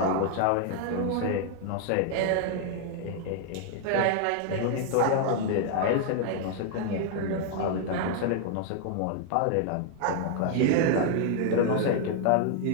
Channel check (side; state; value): both; different; correlation 0.00